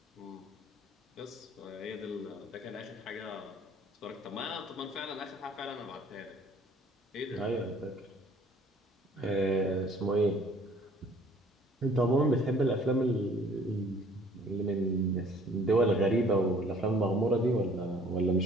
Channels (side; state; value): both; normal; correlation 0.56